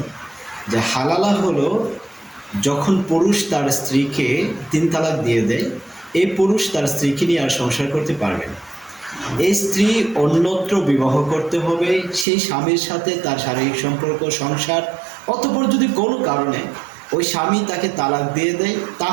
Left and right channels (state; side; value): drops out; left; at 12.2 s